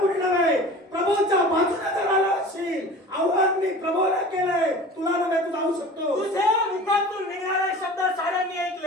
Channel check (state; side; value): normal; both; correlation 0.39